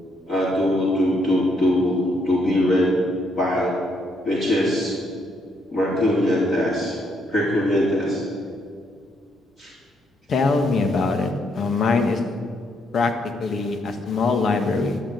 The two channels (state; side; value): normal; both; correlation 0.74